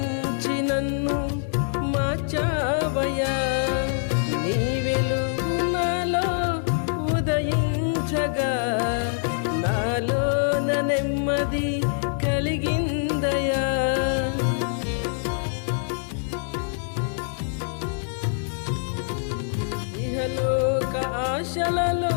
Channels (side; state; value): right; silent; digital silence